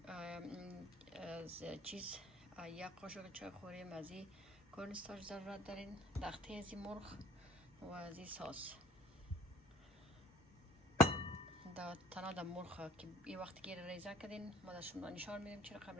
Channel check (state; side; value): normal; both; correlation 0.53